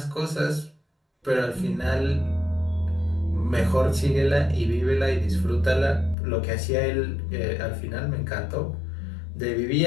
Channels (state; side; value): drops out; right; at 6.2 s